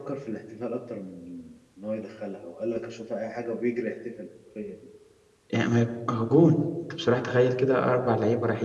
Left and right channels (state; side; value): identical; both; correlation 1.00